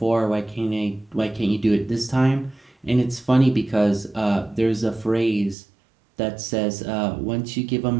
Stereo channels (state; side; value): drops out; left; at 5.6 s